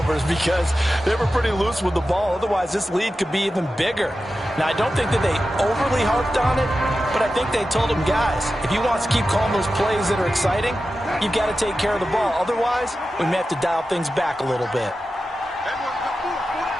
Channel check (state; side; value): normal; both; correlation 0.92